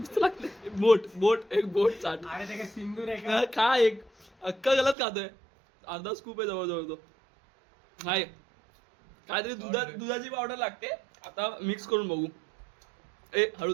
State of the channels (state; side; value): drops out; left; at 5.0 s